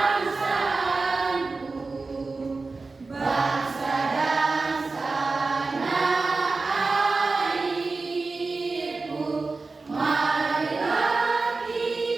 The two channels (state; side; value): quieter; left; 3.8 dB